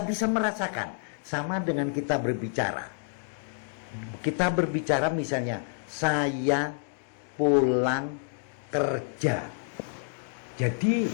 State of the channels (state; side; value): silent; right; digital silence